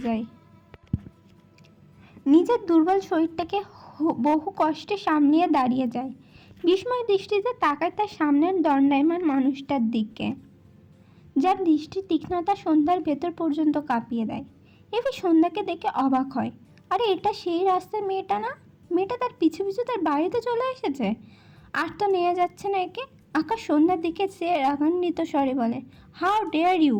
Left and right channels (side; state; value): both; identical; correlation 1.00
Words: যায়। নিজের দুর্বল শরীরটাকে বহু কষ্টে সামলিয়ে দাঁড়িয়ে যায়। বিস্ময় দৃষ্টিতে তাকায় তার সামনের দণ্ডায়মান মানুষটার দিকে, যার দৃষ্টির তীক্ষ্ণতা সন্ধ্যার ভেতর পর্যন্ত কাঁপিয়ে দেয়। এভি সন্ধ্যাকে দেখে অবাক হয়, আরে এটা সেই রাস্তার মেয়েটা না? মেয়েটা তার পিছু পিছু তার বাড়িতে চলে এসেছে। আর তো নেওয়া যাচ্ছে না একে। আকাশ সন্ধ্যার দিকে চেয়ে রাগান্বিত স্বরে বলে, হাউ ডেয়ার ইউ,